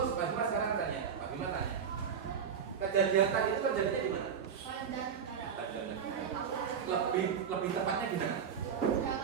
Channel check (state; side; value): quieter; left; 7.2 dB